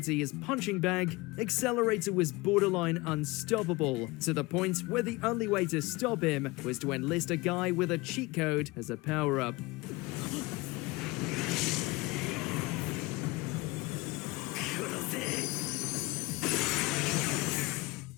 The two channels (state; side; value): quieter; right; 23.0 dB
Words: his punching bag, Accelerator was borderline unstoppable, to the point where the only way to stop him was to enlist a guy with a cheat code as a power-up.